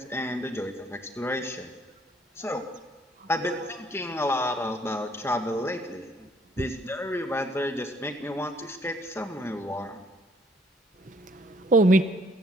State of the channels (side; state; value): both; normal; correlation 0.64